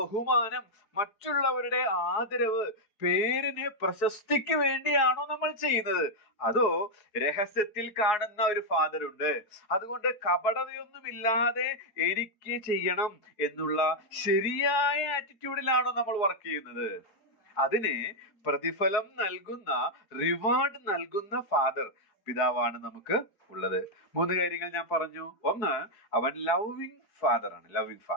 മറ്റുള്ളവരുടെ ആദരവ്, പേരിന് പ്രശസ്തിക്ക് വേണ്ടിയാണോ നമ്മൾ ചെയ്യുന്നത്? അതോ രഹസ്യത്തിൽ കാണുന്ന ഒരു ഫാദർ ഉണ്ട്, അതുകൊണ്ട് കപടതയൊന്നുമില്ലാതെ എനിക്ക് ചെയ്യണം എന്നുള്ള ശരിയായ ആറ്റിറ്റ്യൂഡിലാണോ നമ്മൾ വർക്ക് ചെയ്യുന്നത്? അതിന് പ്രതിഫലം നൽകുന്ന, റിവാർഡ് നൽകുന്ന ഫാദർ, പിതാവാണ് നമുക്ക് ഉള്ളത്. 3 കാര്യങ്ങൾ ഞാൻ പറഞ്ഞു. ഒന്ന്, അവൻ ലവിങ് ഫാദർ ആണ്. Loving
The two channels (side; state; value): right; late; 4.8 ms